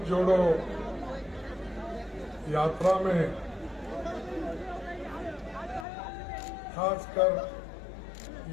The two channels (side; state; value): right; drops out; at 5.9 s